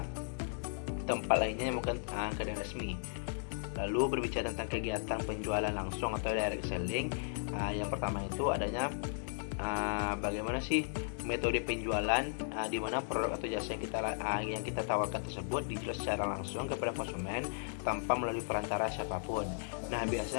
yang bukan kedai resmi. Lalu berbicara tentang kegiatan penjualan langsung atau direct selling. Yang pertama itu adanya bagaimana sih metode penjualan di mana produk atau jasa yang kita tawarkan tersebut dijual secara langsung kepada konsumen tanpa melalui perantara siapapun. Nah,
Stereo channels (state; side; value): silent; right; 54 dB below the other